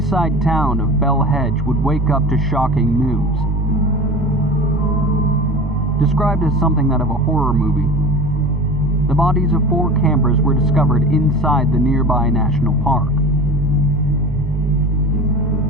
town of Bell Hedge would wake up to shocking news. Described as something out of a horror movie, the bodies of 4 campers were discovered inside the nearby national park.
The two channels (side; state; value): both; normal; correlation 0.34